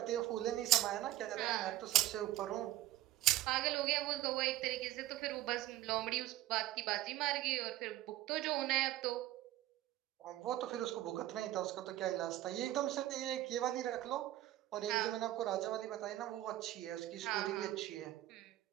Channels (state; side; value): quieter; left; 14.9 dB